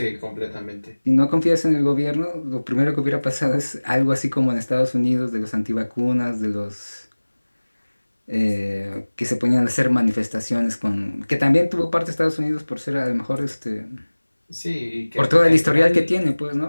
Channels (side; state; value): both; inverted; correlation -1.00